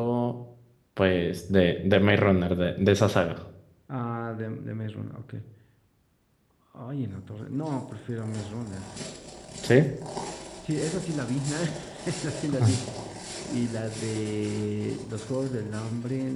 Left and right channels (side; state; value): both; identical; correlation 1.00